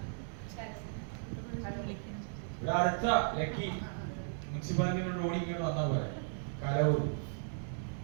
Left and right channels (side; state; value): left; silent; digital silence